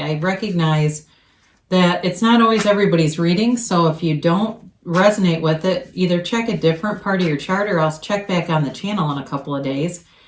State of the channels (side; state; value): both; identical; correlation 1.00